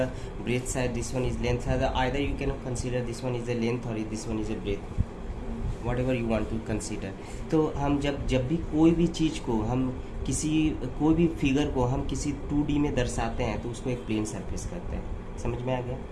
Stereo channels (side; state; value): both; identical; correlation 1.00